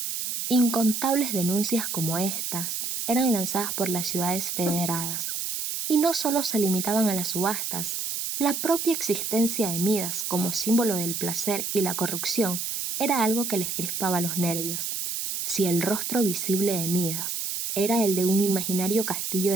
Incontables denuncias como estas eran lanzadas por las ciudades federadas. Y no solo se limitaban a las subastas, la propia existencia de Midas como símbolo del placer y la corrupción era algo que les crispaba los nervios. Si el rostro visible de Midas era el de un imaginario castillo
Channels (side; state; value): right; noise; hiss, 3 dB below the sound